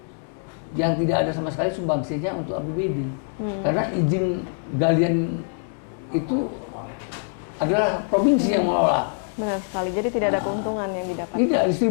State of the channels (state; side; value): silent; right; digital silence